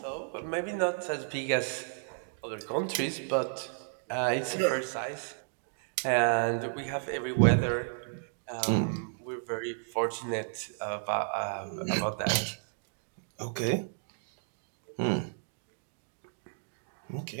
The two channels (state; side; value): silent; left; digital silence